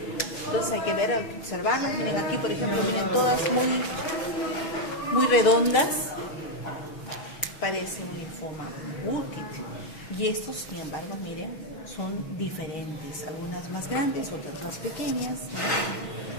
Entonces hay que ver, observarlas. Miren aquí, por ejemplo, miren todas muy redondas. Parece un linfoma Burkitt. Y estos, sin embargo, miren, son diferentes. Algunas más grandes, otras más pequeñas,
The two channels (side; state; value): right; late; 6.3 ms